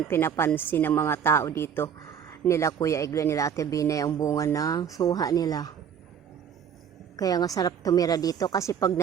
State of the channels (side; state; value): left; quieter; 7.9 dB